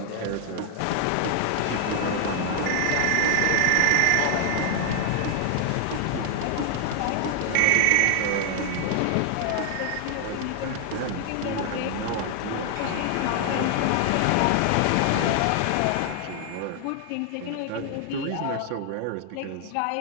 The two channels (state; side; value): different; both; correlation 0.00